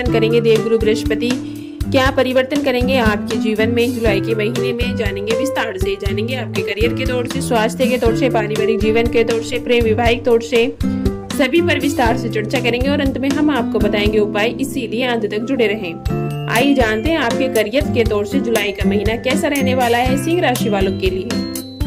करेंगे, देवगुरु बृहस्पति क्या परिवर्तन करेंगे आपके जीवन में जुलाई के महीने में, जानेंगे विस्तार से। जानेंगे आपके करियर के तौर से, स्वास्थ्य के तौर से, पारिवारिक जीवन के तौर से, प्रेम वैवाहिक तौर से, सभी पर विस्तार से चर्चा करेंगे और अंत में हम आपको बताएंगे उपाय, इसीलिए अंत तक जुड़े रहें। आइए जानते हैं आपके करियर के तौर से जुलाई का महीना कैसा रहने वाला है सिंह राशि वालों के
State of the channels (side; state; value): both; identical; correlation 1.00